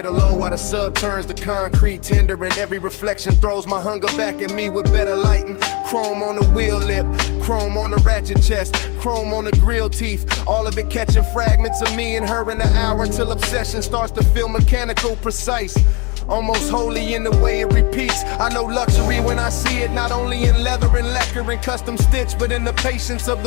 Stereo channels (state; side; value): quieter; right; 28.5 dB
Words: low while the sub turns to concrete tender, and every reflection throws my hunger back at me with better lighting. Chrome on the wheel lip, chrome on the ratchet chest, chrome on the grill teeth, all of it catching fragments of me and her in the hour till obsession starts to feel mechanical, precise. Almost holy in the way it repeats. I know luxury when I see it, not only in leather and lacquer and custom stitch, but in the patience of